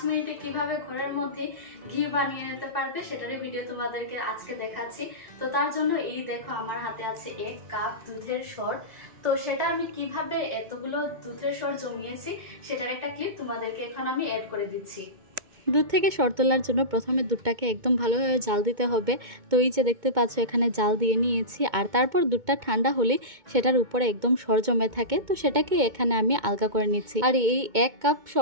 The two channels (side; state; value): left; late; 2.2 ms